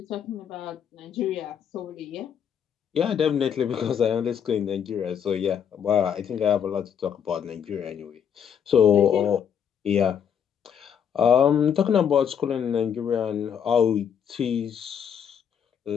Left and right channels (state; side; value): quieter; right; 8.1 dB